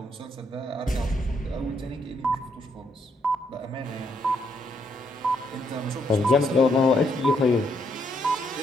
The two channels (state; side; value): normal; both; correlation 0.74